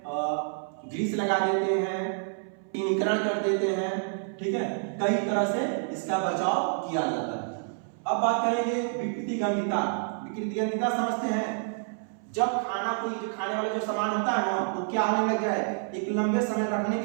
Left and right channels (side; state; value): left; silent; 58 dB below the other